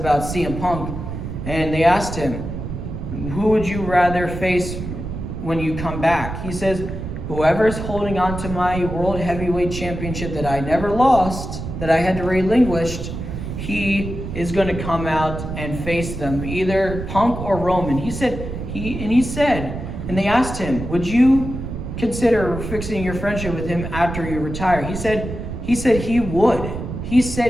CM Punk, and they asked him, who would you rather face when you come back? He says, whoever's holding on to my World Heavyweight Championship that I never lost, that I had to relinquish, he is going to come out and face them, either Punk or Roman. He said, and they asked him, would you consider fixing your friendship with him after you retire? He said he would. He said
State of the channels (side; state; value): right; noise; rumble, 7 dB below the sound